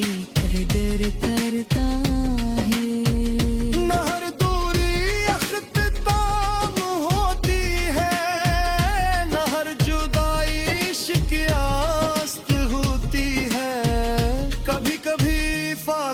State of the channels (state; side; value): identical; both; correlation 1.00